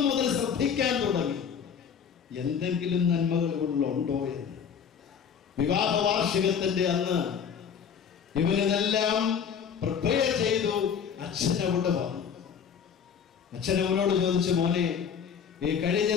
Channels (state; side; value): quieter; right; 7.3 dB